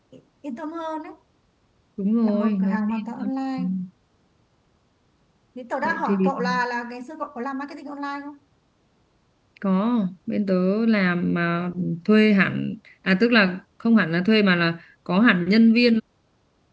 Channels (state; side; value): identical; both; correlation 1.00